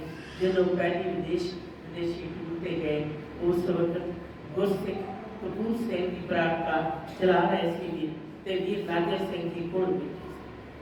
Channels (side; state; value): both; identical; correlation 1.00